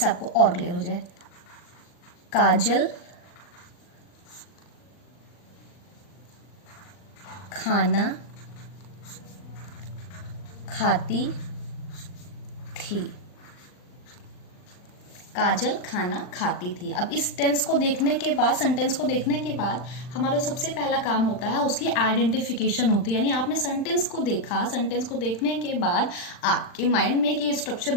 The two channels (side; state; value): right; late; 39 ms